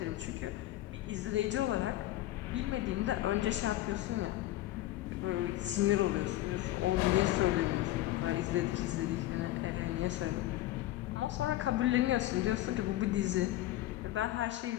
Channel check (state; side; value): quieter; right; 15.5 dB